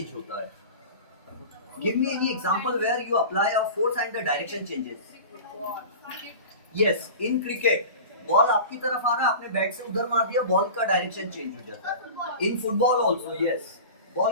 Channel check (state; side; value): inverted; both; correlation -0.35